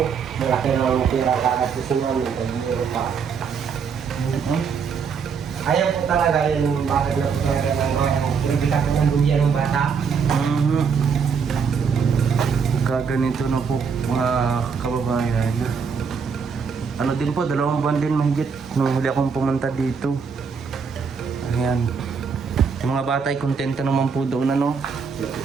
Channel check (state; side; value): quieter; left; 6.0 dB